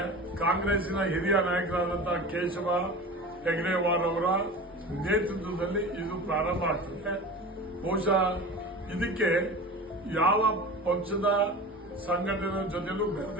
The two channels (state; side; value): normal; both; correlation 0.34